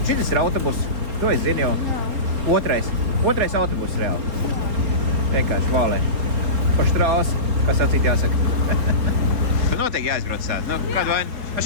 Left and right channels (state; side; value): late; left; 4.4 ms